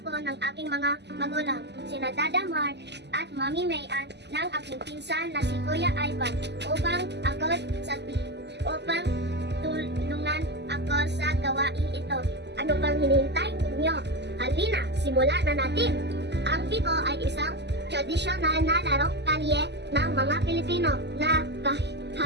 ng aking mga magulang, sina Dada Mark at Mami Mayan ng aking pinsan na si Kuya Ivan upang tulungan ako sa gawain ito. Ano bang hinihintay ninyo? Halina, simulan na natin! Ang piko ay isang tradisyonal na larong kalye ng mga Pilipino na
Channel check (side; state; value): left; late; 0.50 ms